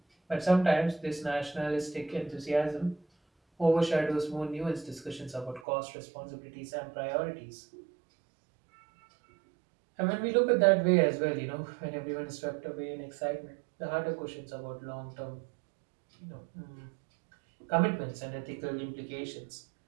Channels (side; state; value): left; drops out; at 5.6 s